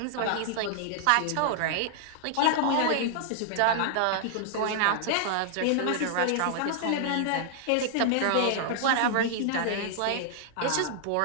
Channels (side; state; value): both; different; correlation 0.00